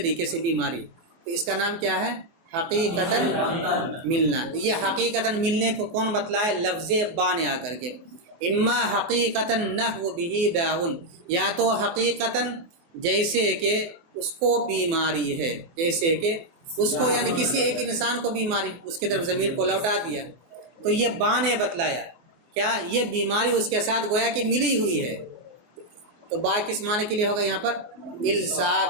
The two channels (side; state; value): left; late; 24 ms